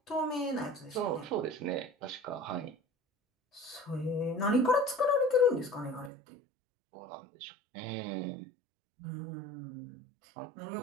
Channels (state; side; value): drops out; left; at 6.1 s